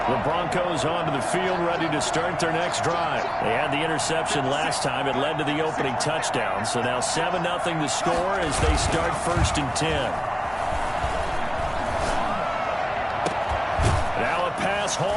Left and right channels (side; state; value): both; identical; correlation 1.00